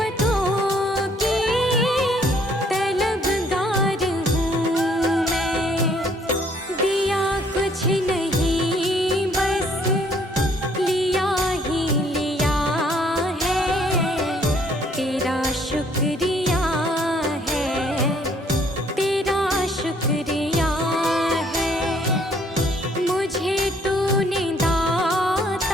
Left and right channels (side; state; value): both; normal; correlation 0.63